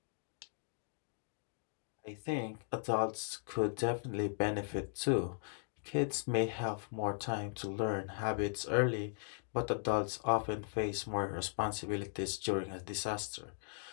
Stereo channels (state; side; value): silent; right; digital silence